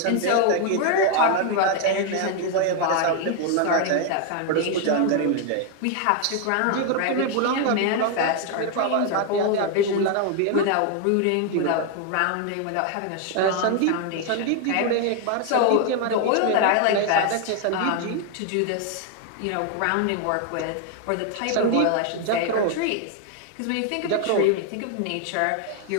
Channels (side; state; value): both; different; correlation 0.00